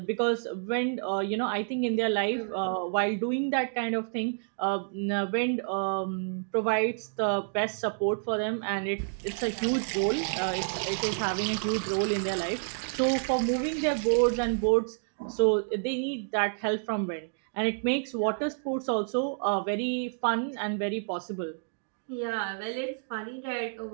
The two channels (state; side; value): silent; left; digital silence